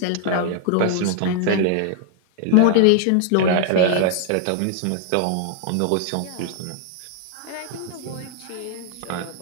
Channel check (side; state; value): both; different; correlation 0.00